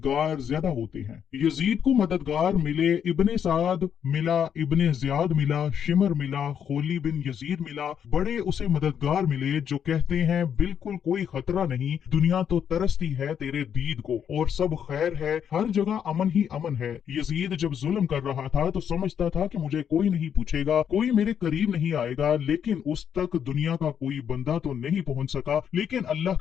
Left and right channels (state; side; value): quieter; right; 8.4 dB